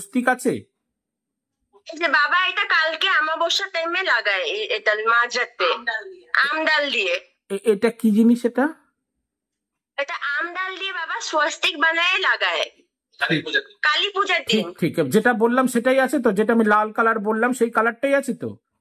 আছে? এই যে বাবা, এটা কালকে অমাবস্যা টাইমে লাগায়, এটা মাঝরাতে আমডাল দিয়ে। এটা কি জিনিস? এটা আমডাল দিয়ে বাবা স্বস্তিক বানায় লাগায় কালী পূজার দিন। ঠিক, যেটা বললাম সেটাই আছে তো? যেটা আমি লাল কালার বললাম সেই কালারটাই আছে তো?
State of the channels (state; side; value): identical; both; correlation 1.00